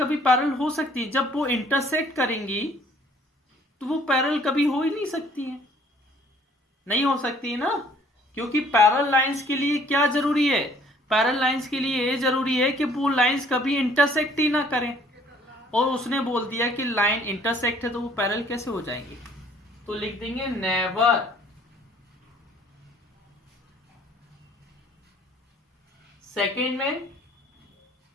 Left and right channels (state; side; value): normal; both; correlation 0.58